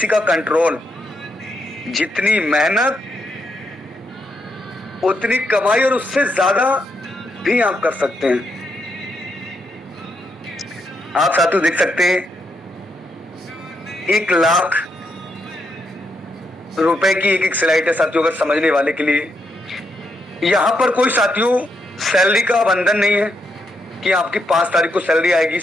का कंट्रोल। जितनी मेहनत उतनी कमाई और उससे ज्यादा भी आप कर सकते हैं। आप साथियों देख सकते हैं 1 लाख रुपए की एक स्लाइड है साथियों, अगर समझने वाले के लिए। यहां पर कोई साथियों सैलरी का बंधन नहीं है कि आपकी 5 तारीख को सैलरी आएगी,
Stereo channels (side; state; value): both; normal; correlation 0.79